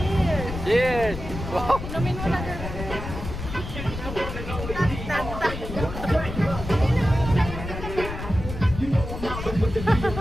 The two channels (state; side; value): noise; left; rumble, 8 dB below the sound